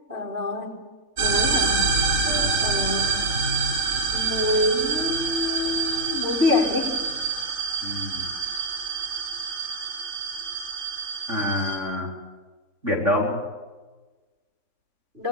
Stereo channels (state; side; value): late; left; 4.0 ms